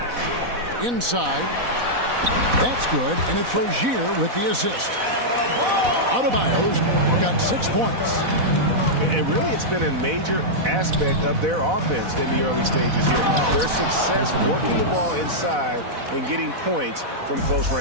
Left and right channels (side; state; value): left; late; 4.1 ms